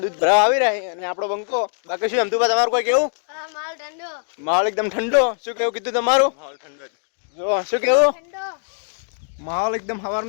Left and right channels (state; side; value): silent; right; digital silence